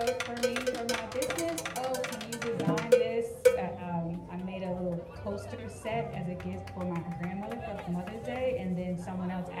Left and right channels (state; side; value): identical; both; correlation 1.00